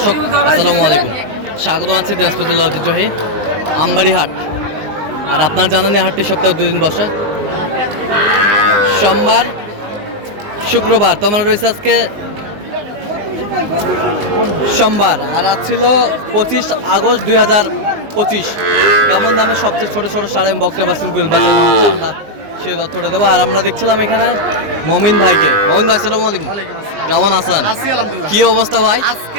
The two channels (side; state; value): left; late; 19 ms